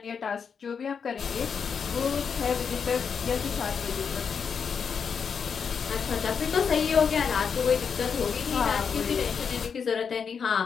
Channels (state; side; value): quieter; right; 6.4 dB